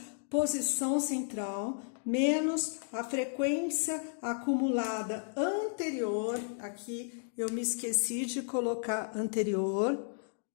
posição central, menos a frequência acumulada anterior, aqui eu me esqueci de colocar anterior,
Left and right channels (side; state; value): right; silent; digital silence